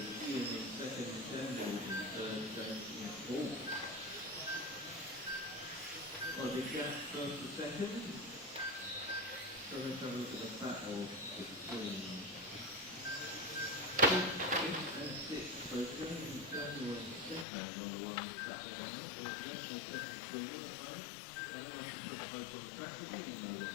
Ian in second, Samuel in third, James in fourth. Quite a big gap first to second. So let's have a look at the battle between 5th and 6th. So James, Samuel and Stefan are the ones battling out. There's definitely second between them at the moment. And then I can put the place on the track again, you know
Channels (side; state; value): right; drops out; at 17.4 s